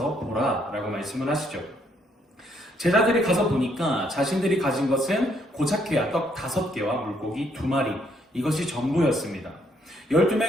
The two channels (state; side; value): normal; both; correlation 0.71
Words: 보라 라고 말씀을 하시죠. 제자들이 가서 보니까 자신들이 가진 것은 고작해야 떡 5개와 물고기 2마리, 이것이 전부였습니다.